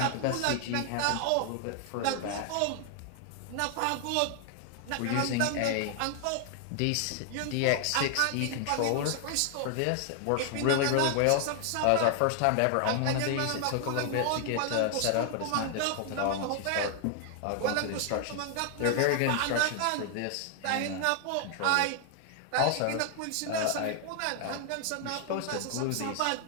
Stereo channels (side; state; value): both; different; correlation 0.00